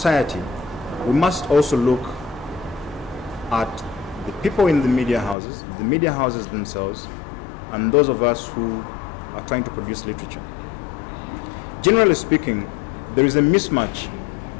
we must also look at the people in the media houses themselves, and those of us who are trying to produce literature. Generally speaking, there is a mismatch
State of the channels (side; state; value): right; drops out; at 5.4 s